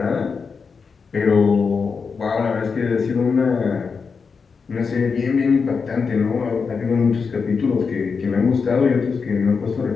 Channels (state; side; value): quieter; right; 5.3 dB